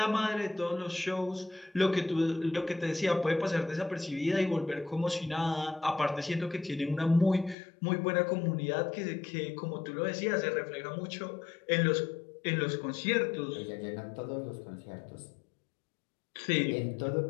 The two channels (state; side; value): drops out; right; at 7.6 s